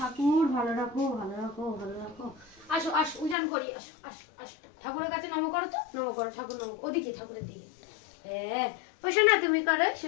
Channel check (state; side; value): drops out; right; at 3.4 s